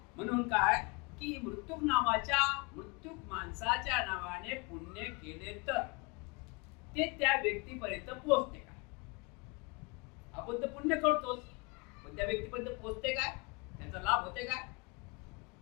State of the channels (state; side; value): quieter; right; 29.0 dB